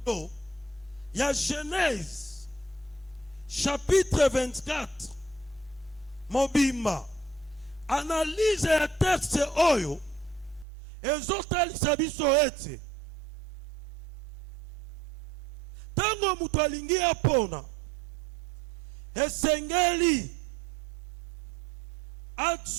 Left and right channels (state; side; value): drops out; left; at 10.7 s